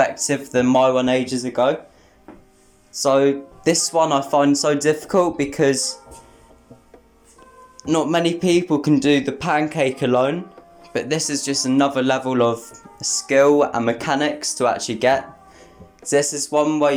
than my one ages ago. So this one I find so difficult because not many people can do the pancake alone, but this is just another level of skill and mechanics to actually get. So this is one where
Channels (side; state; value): both; identical; correlation 1.00